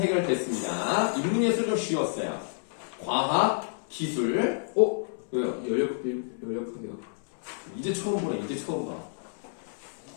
인문예술 좀 쉬웠어요. 과학, 기술, 왜요? 열역학이요. 이제 처음 보네, 이제 처음 봐.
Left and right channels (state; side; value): silent; right; 59 dB below the other